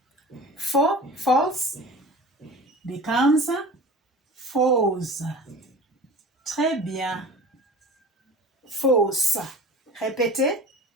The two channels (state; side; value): normal; both; correlation 0.38